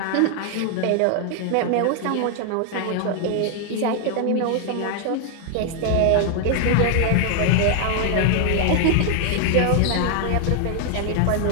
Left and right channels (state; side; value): different; both; correlation 0.00